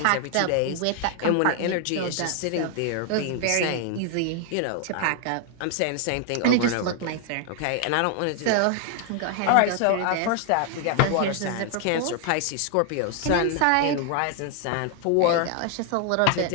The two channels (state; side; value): different; both; correlation 0.00